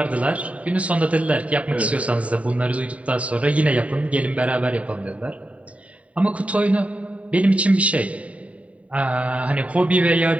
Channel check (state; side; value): late; left; 0.067 ms